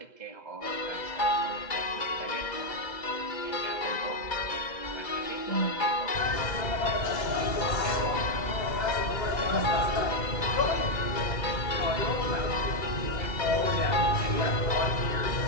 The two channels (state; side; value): late; right; 2.0 ms